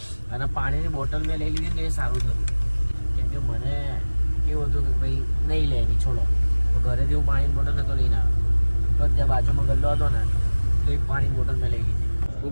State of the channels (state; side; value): inverted; both; correlation -1.00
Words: અને પાણીની બોટલ મેં લઈ લીધી તો એ સારું થયું, કેમ કે મને એવું હતું કે ભાઈ નહીં લેવી, છોડો. તો ઘરેથી હું પાણીની બોટલ નહોતો લઈને આવ્યો. તો ત્યાં બાજુમાં ગલ્લો હતો ને તો એક પાણીની બોટલ મેં લઈ લીધી. હું